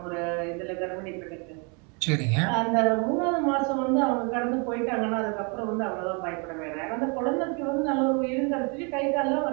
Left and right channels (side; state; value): left; quieter; 33.8 dB